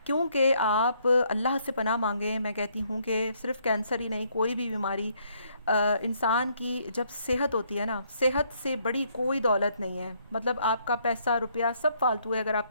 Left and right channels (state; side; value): inverted; both; correlation -0.70